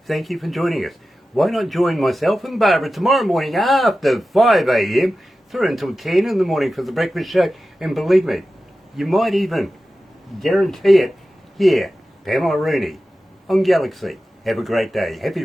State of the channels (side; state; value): both; normal; correlation 0.94